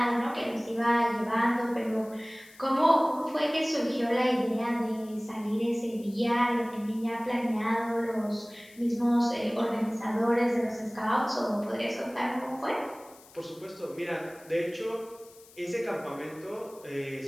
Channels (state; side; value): noise; left; hiss, 24 dB below the sound